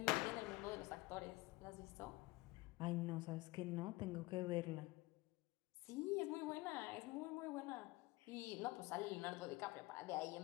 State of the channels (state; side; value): quieter; right; 20.5 dB